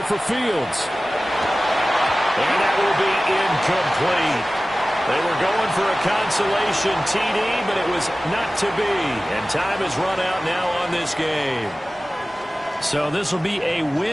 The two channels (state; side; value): normal; both; correlation 0.97